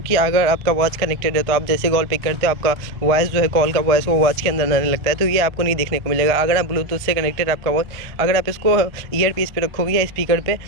कि अगर आपका वॉच कनेक्टेड है तो आप जैसे कॉल पिक करते हो, आपका वॉइस जो है, कॉल का वॉइस वो वॉच के अंदर आने लगता है। तो ये आपको नहीं देखने को मिलेगा। अगर आप ब्लूटूथ से कनेक्टेड आपका वॉच, अगर आप इसको ईयर पीस पे रखोगे या स्पीकर पे,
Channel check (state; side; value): late; left; 1.3 ms